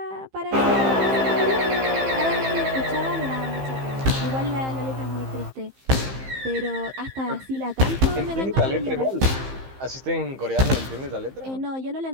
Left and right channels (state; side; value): late; left; 15 ms